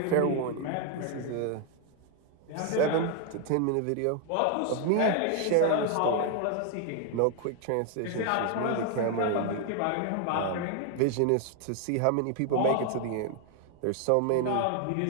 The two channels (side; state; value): both; different; correlation 0.00